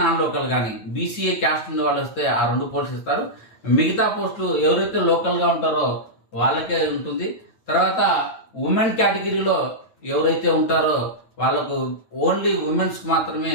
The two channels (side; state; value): right; late; 9.0 ms